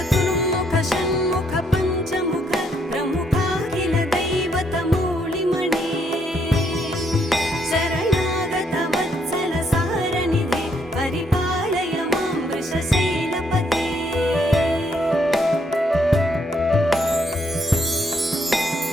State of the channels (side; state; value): both; normal; correlation 0.72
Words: षण्मुख पञ्चमुख प्रमुखाखिल दैवतमूलिमणे शरणागत वत्सल सारनिधे परिपालय मां वृषशैलपते